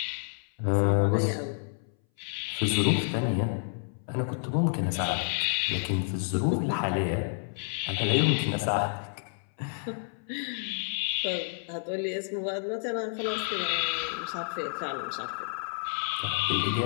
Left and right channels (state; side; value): silent; right; 58 dB below the other